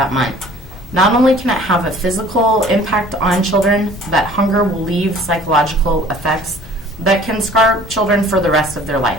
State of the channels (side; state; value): both; normal; correlation 0.50